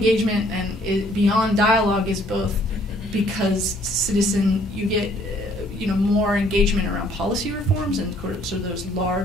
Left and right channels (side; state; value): both; normal; correlation 0.62